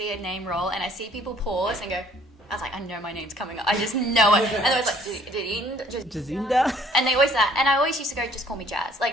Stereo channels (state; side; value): normal; both; correlation 0.59